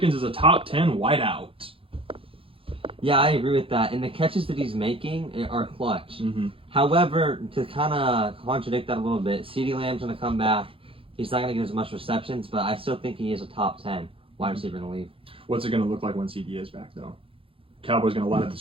is a top 10 wideout. Yeah, I agree with that. And the catches that he's making are clutch. Mm-hmm. However, to kind of contradict that a little bit, CeeDee Lamb's going to come back. He's not going to get as much receptions, but I still think he is a top 10 wide receiver in the league. What's it going to look like when CD is back, though? Cowboys going to light up the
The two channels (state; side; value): late; left; 0.26 ms